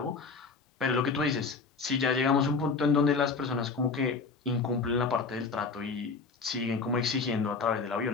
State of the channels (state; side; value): quieter; right; 4.6 dB